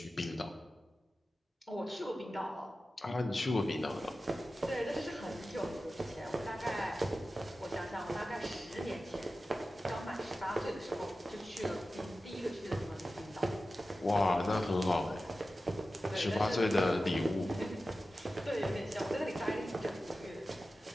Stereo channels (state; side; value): normal; both; correlation 0.94